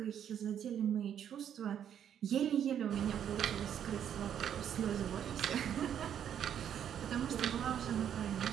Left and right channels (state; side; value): quieter; left; 9.3 dB